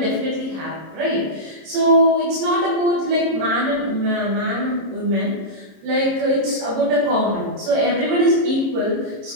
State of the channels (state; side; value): late; left; 26 ms